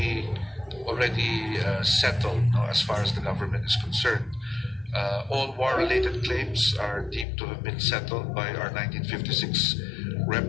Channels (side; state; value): right; drops out; at 7.2 s